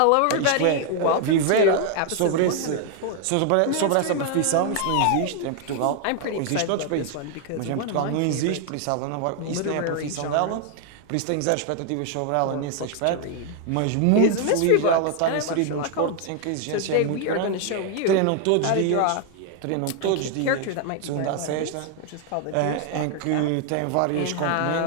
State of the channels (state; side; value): different; both; correlation 0.00